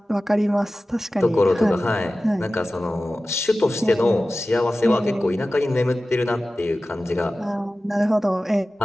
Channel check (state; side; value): normal; both; correlation 0.95